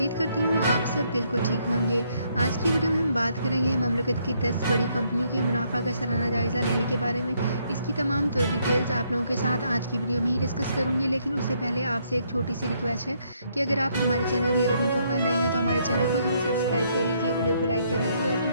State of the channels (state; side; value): inverted; both; correlation -0.72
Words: करती हूँ आप सब बिल्कुल ठीक होंगे। आज की वीडियो में हम बात करेंगे ममलकत की 10 बड़ी कंपनियों के मुनाफा का सालाना जायज़ा लेने के बारे में। इसकी तमाम डिटेल्स आप लोगों के साथ आज की वीडियो में ही डिस्कस करूँगी, लेकिन उससे पहले आपसे एक छोटी सी रिक्वेस्ट है कि अगर आप हमारे चैनल नियर इन्फो पर नए हैं तो हमारे चैनल को जरूर सब्सक्राइब कर लीजिए, वीडियो को लाइक कर लीजिए और